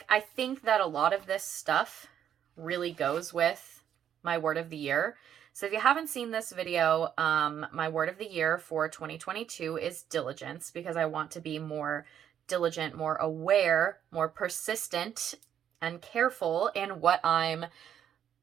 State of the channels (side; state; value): left; quieter; 9.6 dB